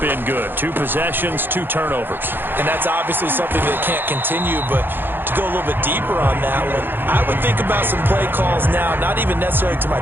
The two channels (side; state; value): left; late; 0.098 ms